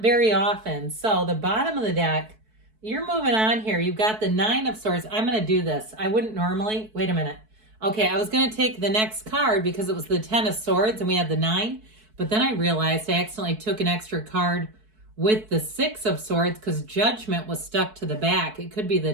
very often. So the bottom of the deck, you're moving on here. You've got the Nine of Swords. I'm going to do this. I wouldn't normally. Wait a minute. Okay, I was going to take the next card because it was the Ten of Swords and we had the 9. But then I realized I accidentally took an extra card with the Six of Swords because Judgment was stuck to the back. It could be the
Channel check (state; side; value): late; left; 4.6 ms